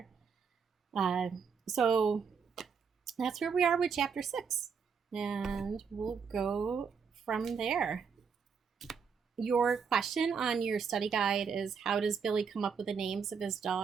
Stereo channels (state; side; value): quieter; left; 6.1 dB